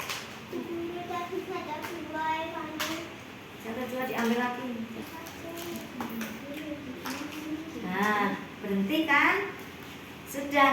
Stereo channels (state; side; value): identical; both; correlation 1.00